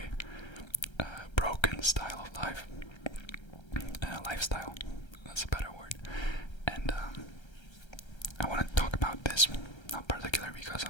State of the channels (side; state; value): right; late; 1.3 ms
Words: broken style of life, lifestyle. That's a better word. And I want to talk about this, not particularly because